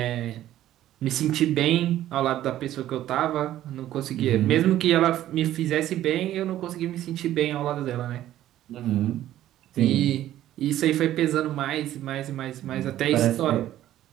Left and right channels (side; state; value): left; quieter; 13.1 dB